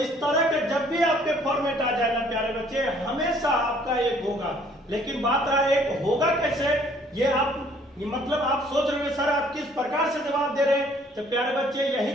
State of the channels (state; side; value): normal; both; correlation 0.60